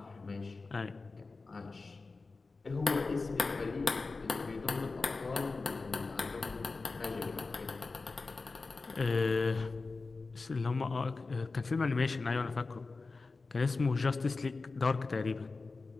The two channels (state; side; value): quieter; right; 3.9 dB